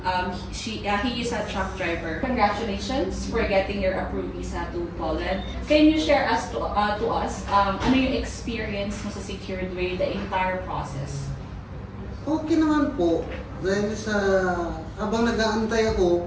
He is a truck driver. Congratulations for getting your approved visa to Poland. Can you share to us ano yung experience mo sa secured way, the entire process? Okay naman po. Dahil sa habang nag-aantay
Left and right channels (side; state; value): both; identical; correlation 1.00